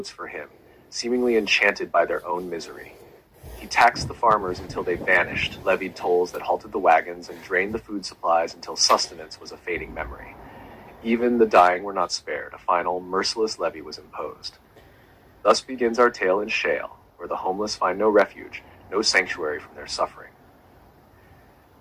for him, seemingly enchanted by their own misery. He taxed the farmers until they vanished, levied tolls that halted the wagons, and drained the food supplies until sustenance was a fading memory. Even the dying were not spared. A final, merciless levy was imposed. Thus begins our tale in Shale, where the homeless find no refuge, no sanctuary from their suffering.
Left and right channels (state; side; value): identical; both; correlation 1.00